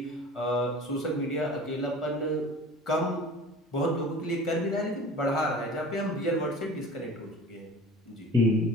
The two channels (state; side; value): normal; both; correlation 0.40